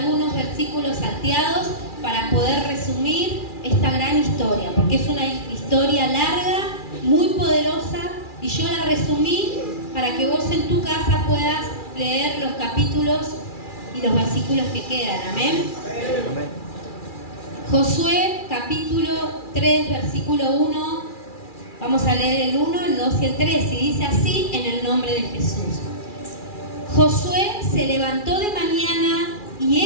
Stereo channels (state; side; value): late; right; 2.4 ms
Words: versículos salteados para poder resumir esta gran historia, porque es una historia larga, muy poderosa, y yo la resumí para que vos en tu casa puedas leer los capítulos y los versículos que quedan. Amén. Josué capítulo 3, versículo 1. Vamos a leer el 1, el 2 y el 3, y dice así en el nombre de Jesús. Josué se levantó de mañana